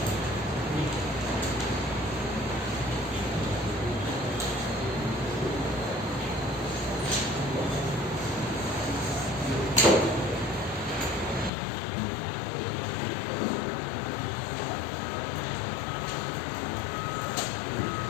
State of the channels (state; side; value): drops out; right; at 11.5 s